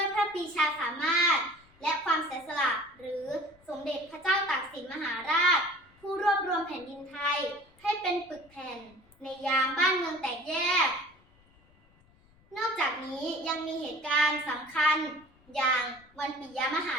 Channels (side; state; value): left; noise; rumble, 30 dB below the sound